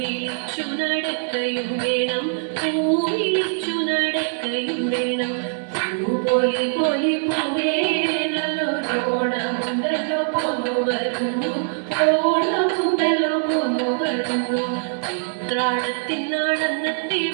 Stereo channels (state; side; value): silent; left; 64 dB below the other